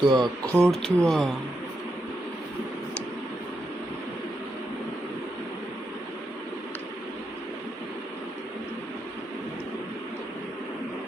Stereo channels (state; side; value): normal; both; correlation 0.83